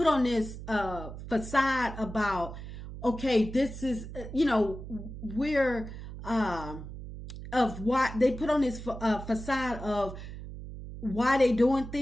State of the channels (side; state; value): right; noise; hum, 11 dB below the sound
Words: on this facade about, okay, this is, we're of why they put on this facade of why they doing